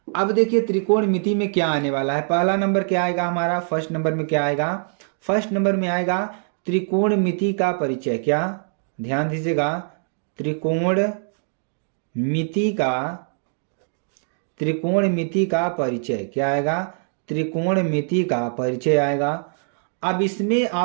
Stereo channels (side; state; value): left; silent; 59 dB below the other